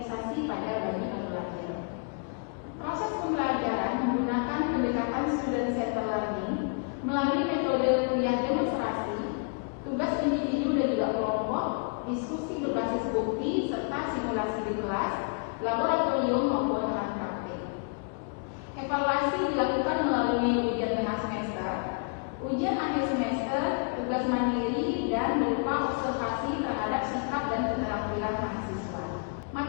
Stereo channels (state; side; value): quieter; right; 39.7 dB